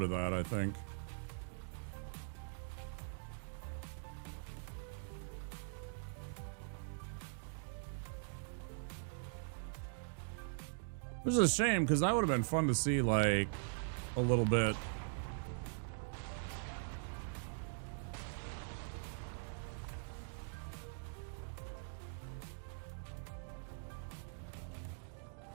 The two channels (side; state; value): left; silent; digital silence